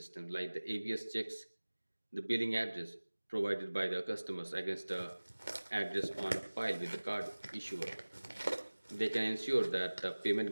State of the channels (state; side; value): inverted; both; correlation -1.00